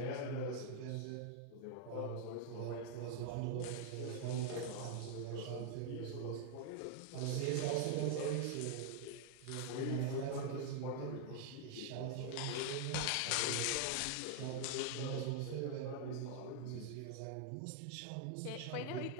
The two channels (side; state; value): both; different; correlation 0.00